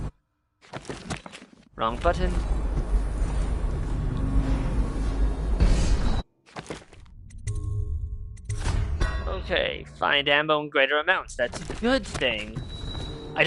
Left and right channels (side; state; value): both; identical; correlation 1.00